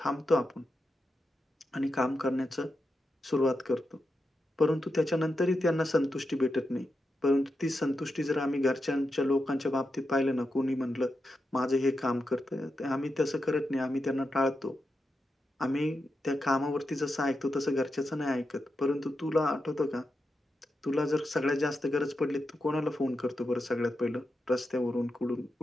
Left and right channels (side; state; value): both; normal; correlation 0.87